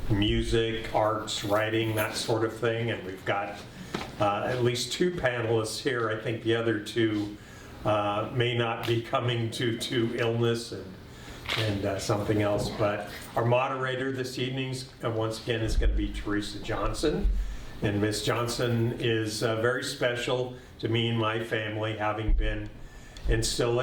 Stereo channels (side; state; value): both; identical; correlation 1.00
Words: music, arts, writing, that sort of thing, and we've got at least 2 panelists here. I think the other 2 may not be coming due to illness and something else, but our moderator this evening, once again, is going to be Teresa Johnson. And Miss Johnson is very special to me and my family, having been and still